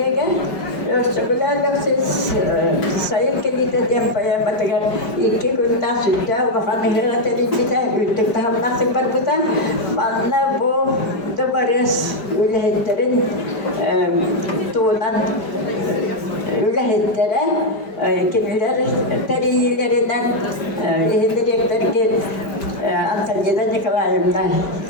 ösüklerle siz sayıp gelip yapmaya batırır iki günden sütte o hanımlara telifite ütük tam nasıl barbuta bana bu da varız ülhetlerin tuğunan ülhetlere kimiler teriyillerinden ihdirekler ki Antalya'da Nikolaev'den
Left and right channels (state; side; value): late; right; 5.0 ms